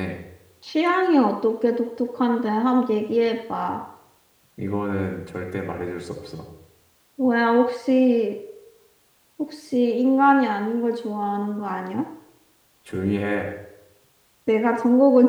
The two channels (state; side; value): identical; both; correlation 1.00